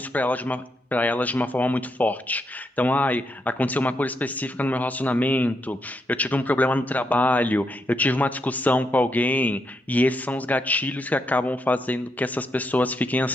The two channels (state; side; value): normal; both; correlation 0.80